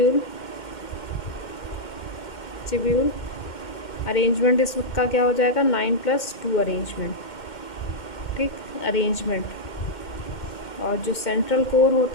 arrangement इसका क्या हो जाएगा, 9+2 अरेंजमेंट, ठीक, अरेंजमेंट। और जो सेंट्रल कोर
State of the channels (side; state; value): right; late; 2.1 ms